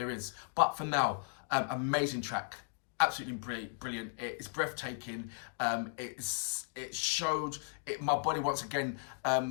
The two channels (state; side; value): silent; right; 54 dB below the other